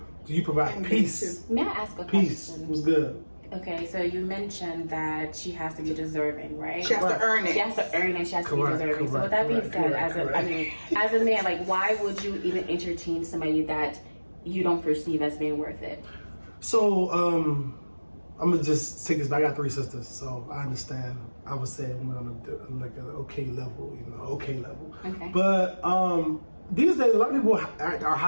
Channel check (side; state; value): both; inverted; correlation -1.00